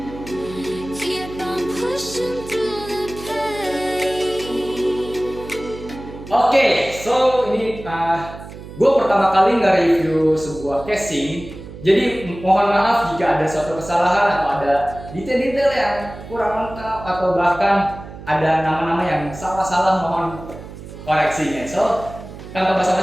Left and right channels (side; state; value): right; noise; hum, 14 dB below the sound